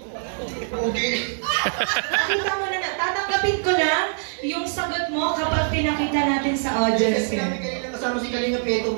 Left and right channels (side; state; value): left; silent; 58 dB below the other